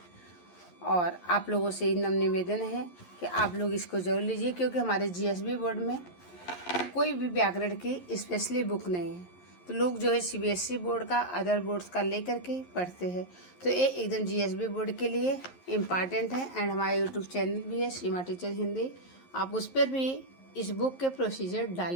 और आप लोगों से नम्र निवेदन है कि आप लोग इसको जरूर लीजिए, क्योंकि हमारे GSB बोर्ड में कोई भी व्याकरण की स्पेशली बुक नहीं है। तो लोग जो है CBSE बोर्ड का, अदर बोर्ड्स का लेकर के पढ़ते हैं। तो ये एकदम GSB बोर्ड के लिए इम्पॉर्टेंट है। एंड हमारा YouTube चैनल भी है, सीमा टीचर हिंदी, आप उस पर भी इस बुक के प्रोसीजर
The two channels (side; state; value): right; late; 11 ms